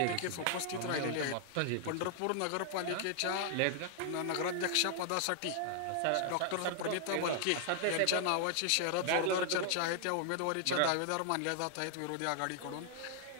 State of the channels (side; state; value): both; different; correlation 0.00